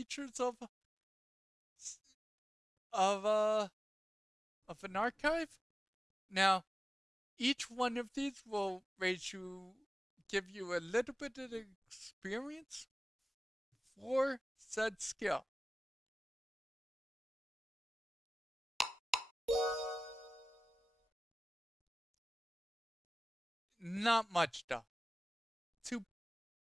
of uh of an archive. Now, each one of these will give you a little bit of experience for said skill. Not much though. Two,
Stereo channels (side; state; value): both; normal; correlation 0.97